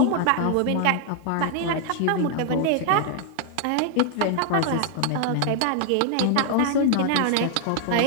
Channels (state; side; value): different; both; correlation 0.00